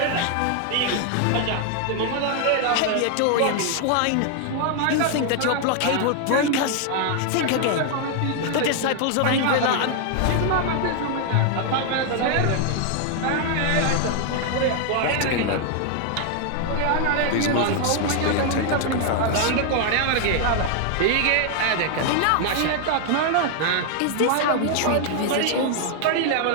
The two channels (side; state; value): both; different; correlation 0.00